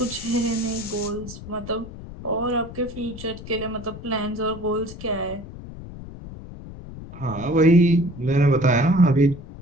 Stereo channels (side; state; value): left; noise; rumble, 13 dB below the sound